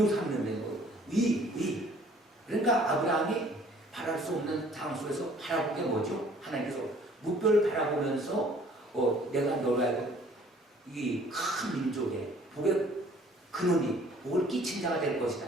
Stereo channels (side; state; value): both; normal; correlation 0.56